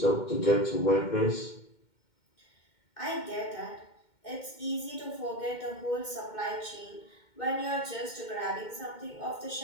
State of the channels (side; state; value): right; late; 2.2 ms